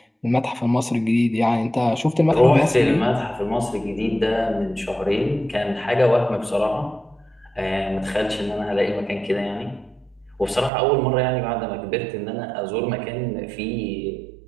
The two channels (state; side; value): drops out; left; at 10.7 s